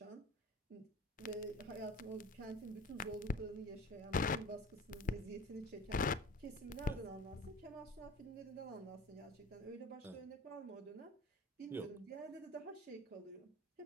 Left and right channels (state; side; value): normal; both; correlation 0.40